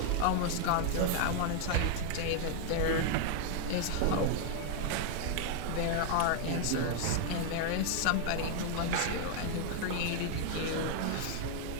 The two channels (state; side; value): different; both; correlation 0.00